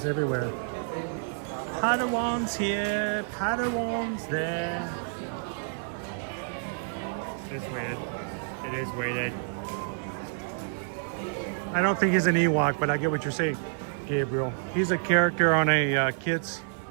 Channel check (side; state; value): left; silent; 59 dB below the other